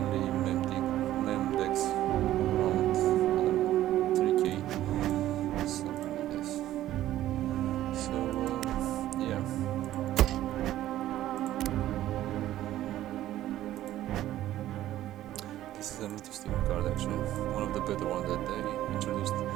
mem decks around 3k, something like this. So yeah. This is an interesting card actually, one of the better ones that they introduced.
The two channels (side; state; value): left; quieter; 13.6 dB